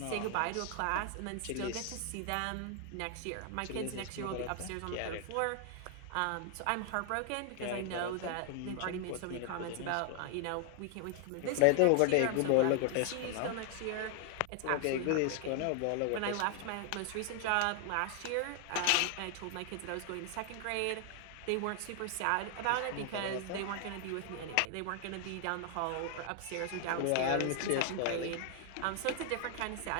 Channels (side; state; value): both; different; correlation 0.00